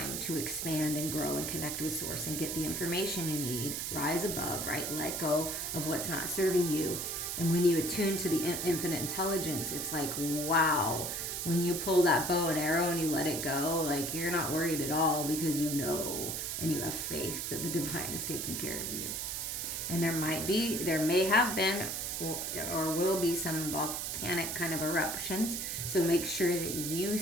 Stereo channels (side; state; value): right; noise; hiss, 3 dB below the sound